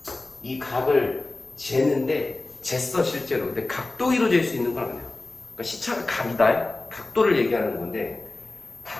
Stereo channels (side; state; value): right; quieter; 3.1 dB